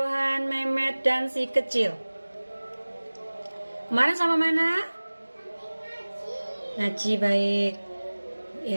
Mehmet, dan si kecil. Kemarin sama mana? Ngaji, baik.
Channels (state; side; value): inverted; both; correlation -1.00